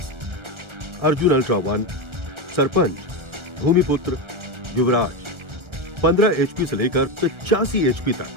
अर्जुन अल्ट्रा 1, सरपंच, भूमिपुत्र, युवराज, 15 HP से लेकर 85 HP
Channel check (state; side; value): late; left; 1.4 ms